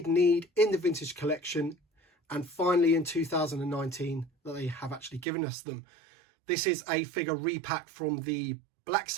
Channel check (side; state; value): left; drops out; at 5.2 s